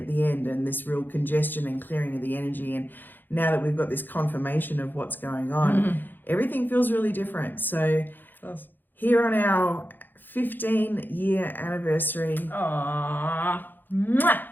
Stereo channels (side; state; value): right; late; 0.090 ms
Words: the end and this real congestion and clearing of the energy. And now that we've got this confirmation of what's going on, everything feels really different. So here on our 15-year anniversary,